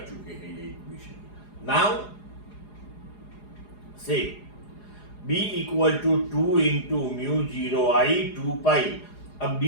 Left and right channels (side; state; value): right; late; 4.8 ms